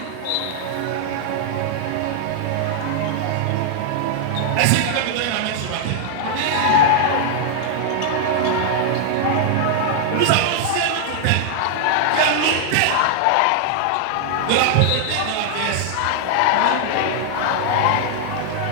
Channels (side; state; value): both; different; correlation 0.00